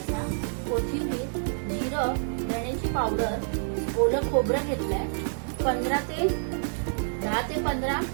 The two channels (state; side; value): silent; left; 59 dB below the other